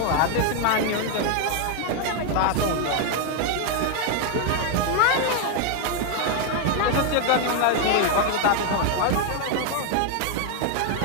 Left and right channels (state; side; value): different; both; correlation 0.01